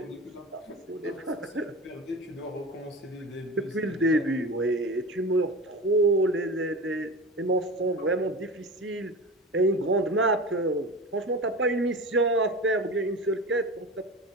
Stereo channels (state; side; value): normal; both; correlation 0.30